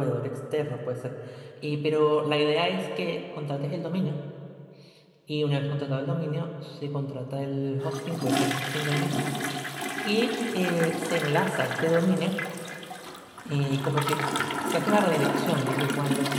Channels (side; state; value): both; identical; correlation 1.00